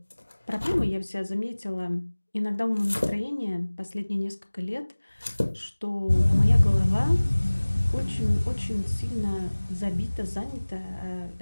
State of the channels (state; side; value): inverted; both; correlation -1.00